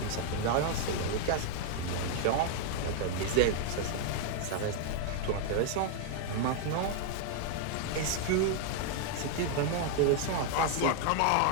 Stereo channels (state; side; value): different; both; correlation 0.00